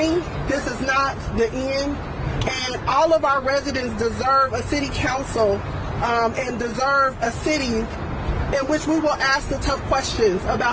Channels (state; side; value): identical; both; correlation 1.00